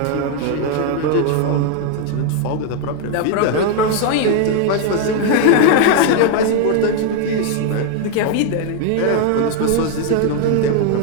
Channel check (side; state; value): both; different; correlation 0.01